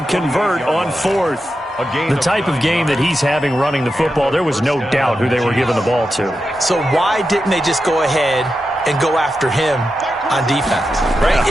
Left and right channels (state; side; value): normal; both; correlation 0.89